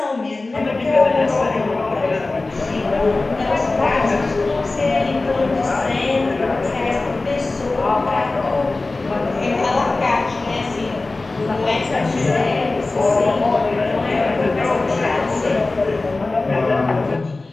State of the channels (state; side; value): quieter; right; 3.3 dB